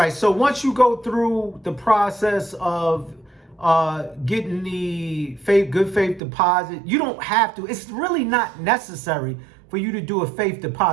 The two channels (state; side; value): drops out; left; at 6.2 s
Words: So once you go through the process of getting the good faith deposit, you don't have to. It's really not necessary for you to do a faith